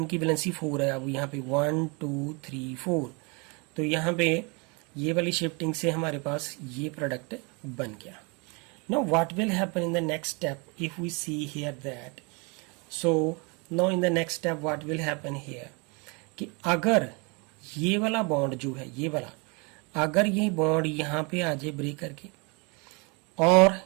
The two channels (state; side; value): quieter; left; 31.1 dB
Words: की वैलेंसी 4 है। अब यहाँ पे 1 2 3 4, तो यहाँ पे ये वाली शिफ्टिंग से हमारे पास ये प्रोडक्ट बन गया। Now what will happen in the next step if we see here that, so now in the next step what will happen here, कि अगर ये वाला बॉन्ड जो है, ये वाला अगर ये बॉन्ड यहाँ पे आ जाए ब्रेक करके, और